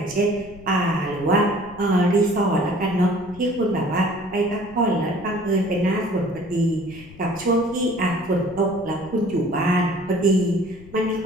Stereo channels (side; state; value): left; noise; rumble, 20 dB below the sound